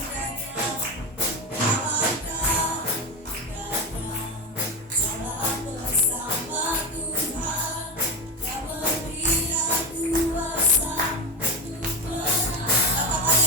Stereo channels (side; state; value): both; normal; correlation 0.18